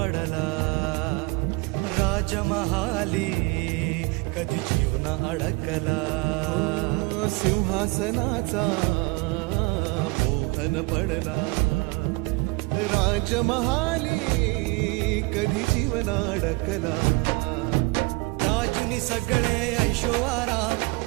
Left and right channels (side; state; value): left; quieter; 26.4 dB